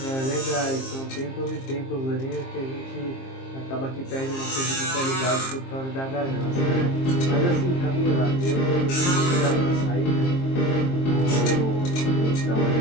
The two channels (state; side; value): late; right; 23 ms